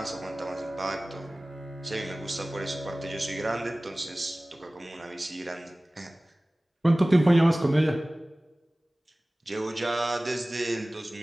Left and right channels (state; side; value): normal; both; correlation 0.98